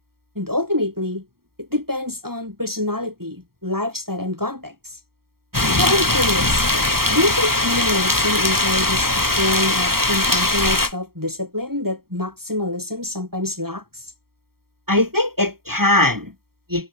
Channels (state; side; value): late; left; 0.94 ms